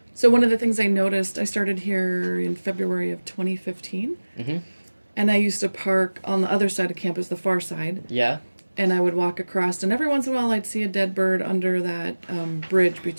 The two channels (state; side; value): inverted; both; correlation -1.00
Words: So one of the things I noticed, I started here in February of 2015, Mm-hmm. and I used to park on the other side of campus, the far side, Yeah? and I would walk across, and every once in a while I'd see a dead bird under that bridge